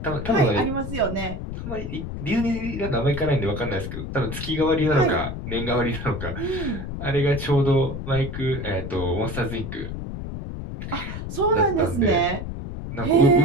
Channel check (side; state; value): left; noise; rumble, 7 dB below the sound